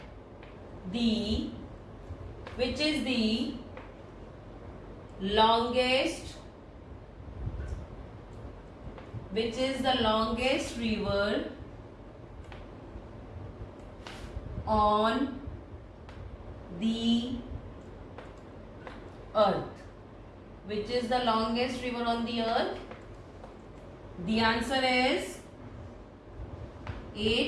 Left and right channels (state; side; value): identical; both; correlation 1.00